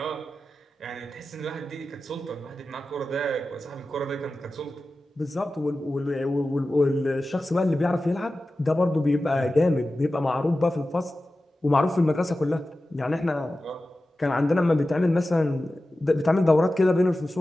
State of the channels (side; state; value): both; normal; correlation 0.94